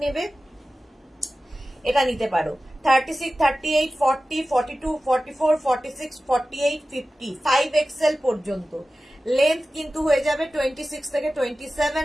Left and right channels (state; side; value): normal; both; correlation 0.95